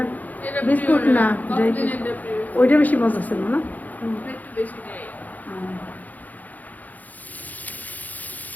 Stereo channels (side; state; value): right; late; 0.081 ms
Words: বিস্কুট না ওইটা বেশি মজা ছিল না।